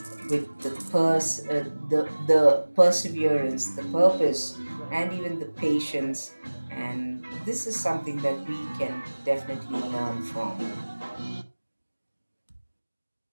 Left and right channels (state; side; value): inverted; both; correlation -1.00